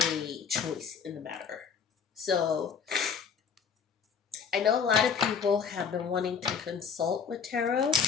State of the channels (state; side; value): quieter; right; 6.5 dB